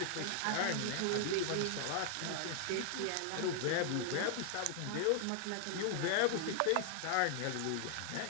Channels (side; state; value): both; different; correlation 0.00